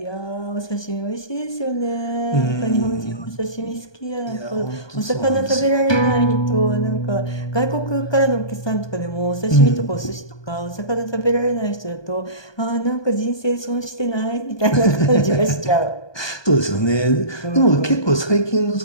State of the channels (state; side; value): late; right; 1.2 ms